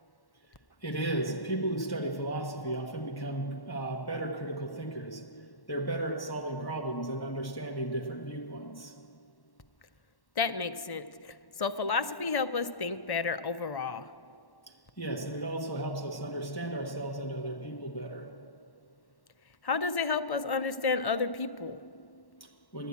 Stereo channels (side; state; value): right; late; 1.1 ms